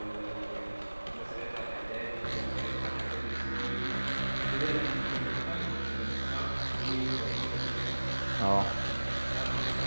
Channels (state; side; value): inverted; both; correlation -1.00